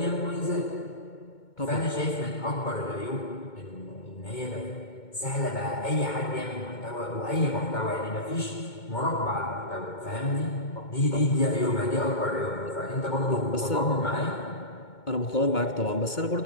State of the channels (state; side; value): late; right; 2.2 ms